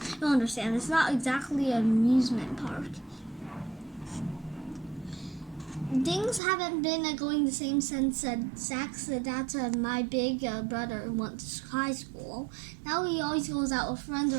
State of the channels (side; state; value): left; drops out; at 6.4 s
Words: you'll understand. It's not exactly an amusement park. Things haven't been going the same since Zach's that's my big brother went to high school. Now he always goes out with friends